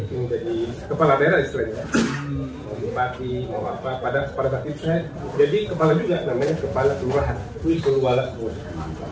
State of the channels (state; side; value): identical; both; correlation 1.00